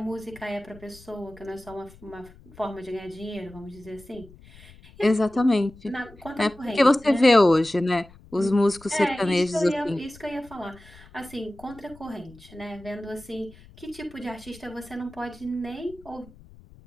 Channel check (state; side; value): noise; left; rumble, 22 dB below the sound